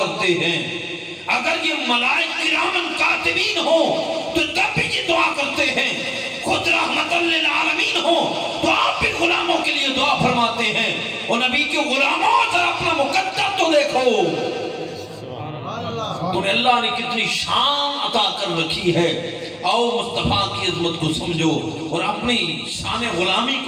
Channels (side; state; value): both; identical; correlation 1.00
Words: ہیں، اگر یہ ملائک کرام کاتبین ہوں تو تب بھی یہ دعا کرتے ہیں، خود رحمت للعالمین ہو تو آپ بھی غلاموں کے لیے دعا فرماتے ہیں۔ اور نبی کے غلاموں ذرا اپنا مقدر تو دیکھو، تمہیں اللہ نے کتنی شان عطا کر رکھی ہے، آؤ مصطفیٰ کی عظمت کو سمجھو اور اپنی شان غلامی